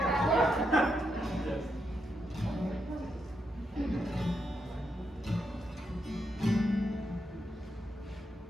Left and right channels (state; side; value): normal; both; correlation 0.82